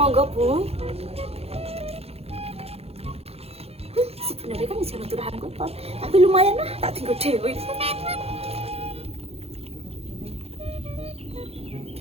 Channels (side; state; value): left; late; 0.29 ms